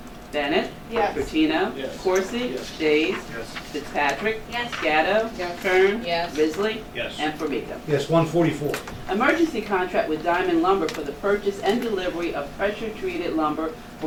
Bennett? Yes. Bertino? Yes. Corsi? Yes. Days? Yes. Fitzpatrick? Yes. Gatto? Yes. Kern? Yes. Risley? Yes. And Formica. Yes, 144. Emergency contract with Diamond Lumber for the purchase and delivery of pressure-treated lumber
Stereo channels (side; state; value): both; identical; correlation 1.00